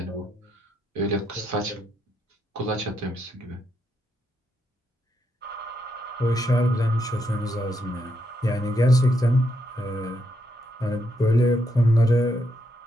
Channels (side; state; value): both; normal; correlation 0.79